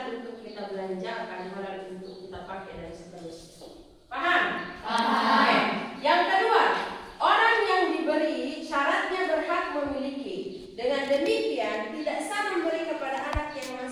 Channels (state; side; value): identical; both; correlation 1.00